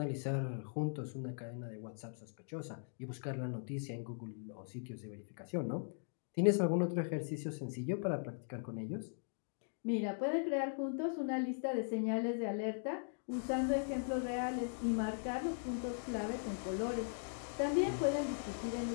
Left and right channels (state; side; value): silent; right; digital silence